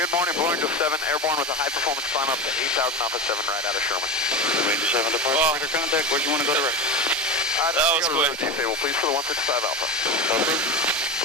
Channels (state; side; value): normal; both; correlation 0.22